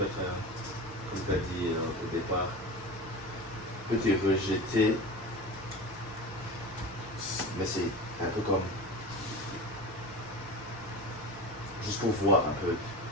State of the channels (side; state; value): both; normal; correlation 0.31